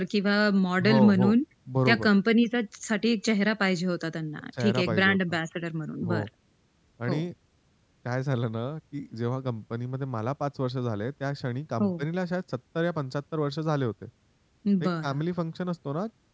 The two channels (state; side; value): identical; both; correlation 1.00